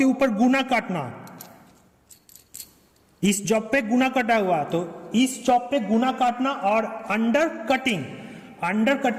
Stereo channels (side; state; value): both; identical; correlation 1.00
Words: ऊपर गुना काटना, इस जॉब पे गुना कटा हुआ, तो इस जॉब पे गुना काटना। और अंडर